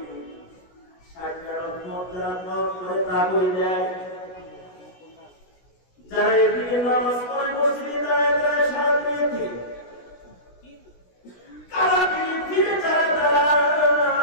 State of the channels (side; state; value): right; late; 16 ms